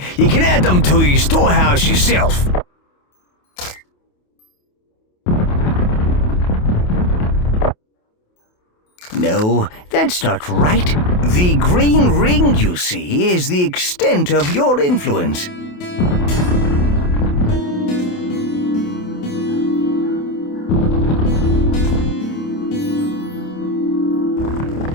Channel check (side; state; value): right; late; 28 ms